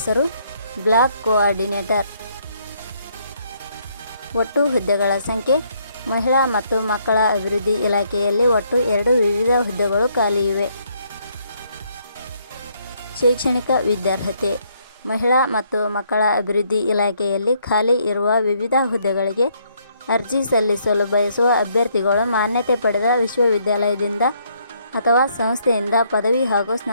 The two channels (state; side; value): inverted; both; correlation -0.70